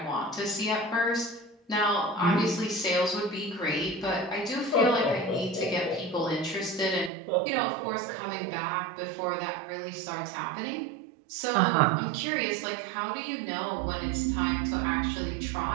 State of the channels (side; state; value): left; drops out; at 7.1 s